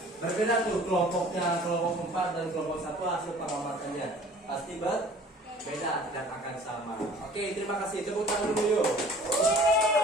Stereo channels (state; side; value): normal; both; correlation 0.49